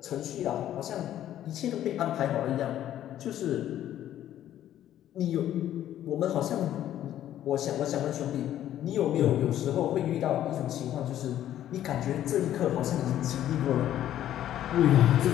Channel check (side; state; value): right; quieter; 11.9 dB